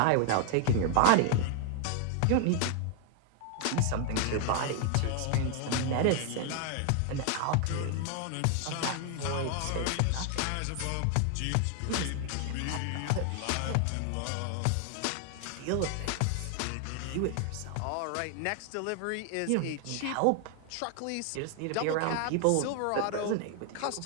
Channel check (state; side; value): different; both; correlation 0.00